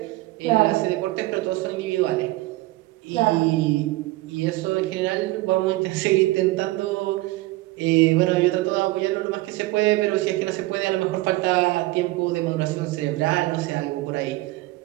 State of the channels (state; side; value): quieter; left; 19.5 dB